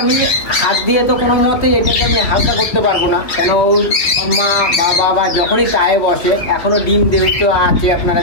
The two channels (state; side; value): late; right; 2.8 ms